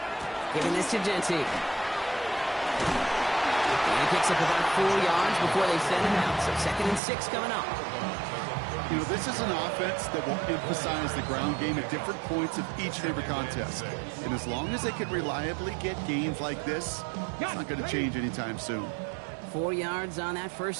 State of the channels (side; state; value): left; drops out; at 7.0 s